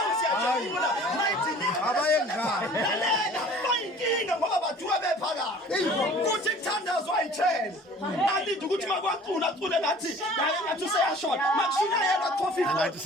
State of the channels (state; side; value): normal; both; correlation 0.48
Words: siyajabula. Mayidinga. Abayengane. Lalela bayinkinga ngoba bathuka bephakathi. Kuthi kuthandazwa ayithele. Alinde ukuthi makwacula acule ngathi ngathi useyashona. Makushina yena coffee.